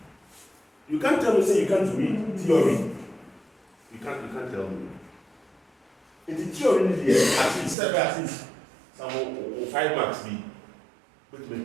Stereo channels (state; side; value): drops out; left; at 7.8 s